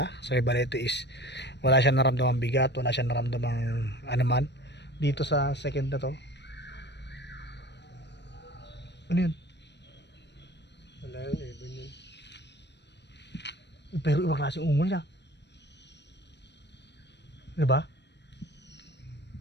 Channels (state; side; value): late; right; 0.50 ms